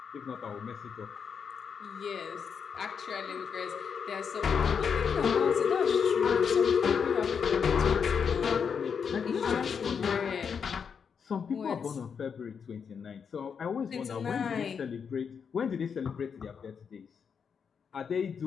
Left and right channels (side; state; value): right; quieter; 6.6 dB